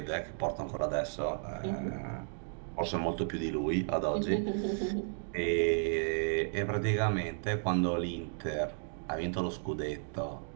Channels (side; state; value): left; silent; digital silence